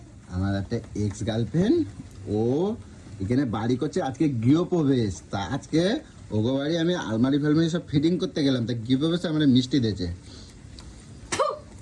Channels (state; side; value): identical; both; correlation 1.00